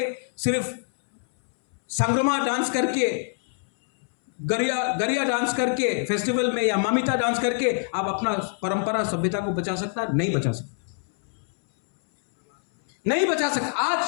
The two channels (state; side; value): silent; right; 62 dB below the other